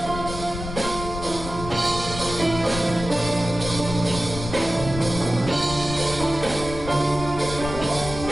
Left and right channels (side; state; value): left; noise; rumble, 8 dB below the sound